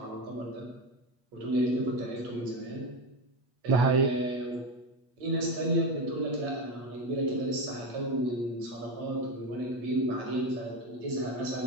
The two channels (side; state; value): left; late; 8.4 ms